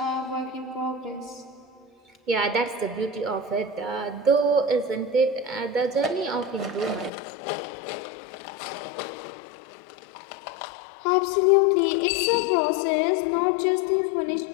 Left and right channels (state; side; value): drops out; right; at 7.1 s